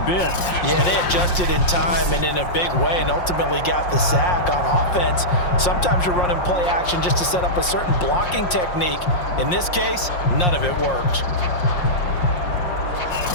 bit. Yeah, they adjusted in time and in a big way and ultimately got the sack on offense. Sometimes you're running play action just to set up a certain blocking technique. In this case, none of it worked.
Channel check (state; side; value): late; right; 5.6 ms